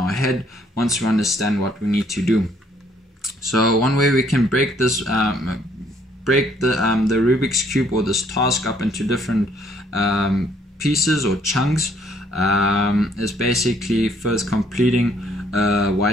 head once we understand what we need to do. So one way we can break this, the Rubik's Cube or this task up into different pieces or chunks is basically first completing a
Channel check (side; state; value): both; normal; correlation 0.65